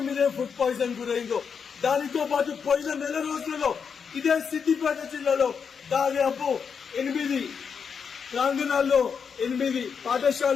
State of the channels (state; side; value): quieter; right; 6.4 dB